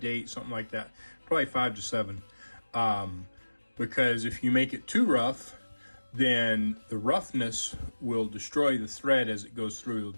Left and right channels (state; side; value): inverted; both; correlation -1.00